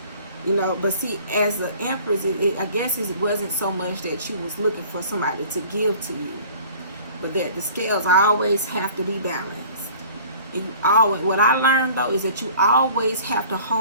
You know, but see, as an Empress, I guess it wasn't so much that you was looking for somebody to give to you. But that the scales always have to be balanced. And you always, what I learned though is that you always have to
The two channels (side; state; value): both; inverted; correlation -0.48